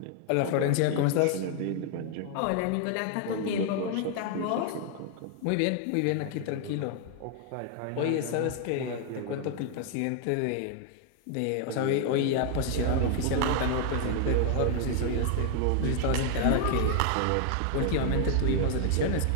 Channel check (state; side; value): different; both; correlation 0.00